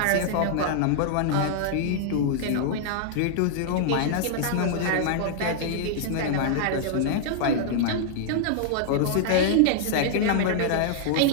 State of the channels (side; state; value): both; different; correlation -0.01